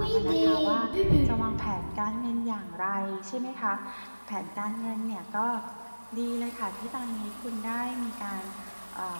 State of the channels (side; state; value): both; inverted; correlation -1.00